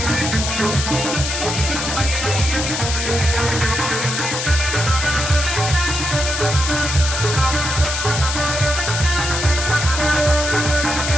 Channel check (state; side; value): noise; left; hiss, 3 dB below the sound